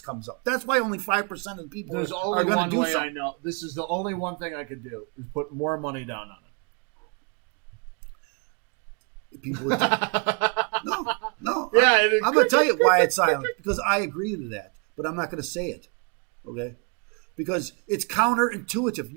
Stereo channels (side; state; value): left; quieter; 36.3 dB